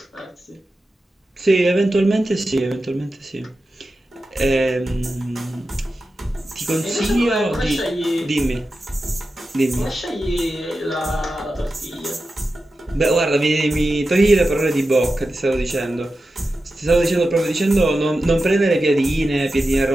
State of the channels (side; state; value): both; normal; correlation 0.92